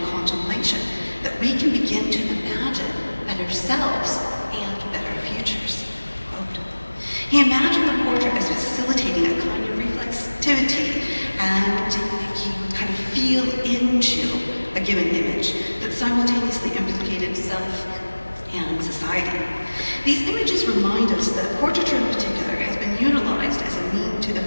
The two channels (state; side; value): inverted; both; correlation -1.00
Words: contemplation that we can begin to imagine better selves and better futures." Quote. He imagined the portrait as facilitating a kind of reflexivity, and he would kind of feel into a given image that simultaneously implicated self and society. These images remind us that portraiture in particular has been utilized as a means to